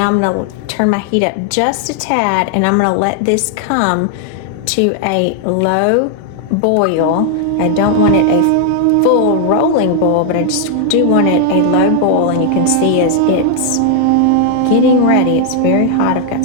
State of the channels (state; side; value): different; both; correlation 0.00